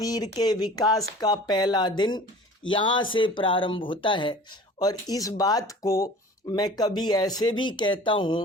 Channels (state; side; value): normal; both; correlation 0.43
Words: के विकास का पहला दिन यहाँ से प्रारंभ होता है। और इस बात को मैं कभी ऐसे भी कहता हूँ